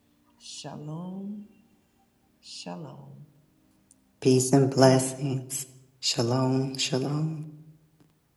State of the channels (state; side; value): identical; both; correlation 1.00